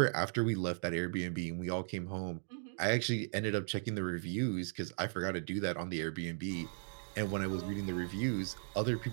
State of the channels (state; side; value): silent; left; digital silence